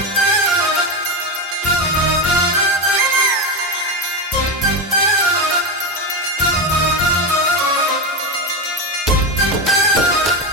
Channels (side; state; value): both; normal; correlation 0.15